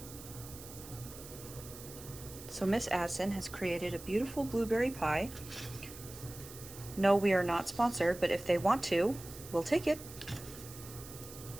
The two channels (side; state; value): right; noise; hiss, 15 dB below the sound